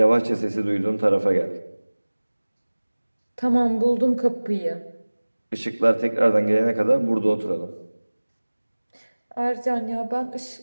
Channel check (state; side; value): inverted; both; correlation -1.00